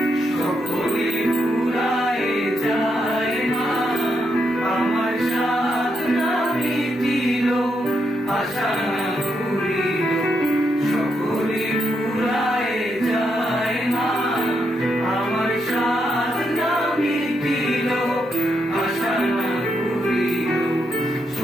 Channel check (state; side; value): normal; both; correlation 0.80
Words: সকলে ফুরায় যায় মা আমার সাধনা মিটিল আশা না ফুরিল